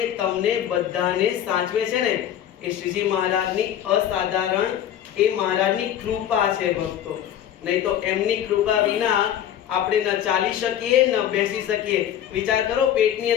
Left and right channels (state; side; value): quieter; right; 10.6 dB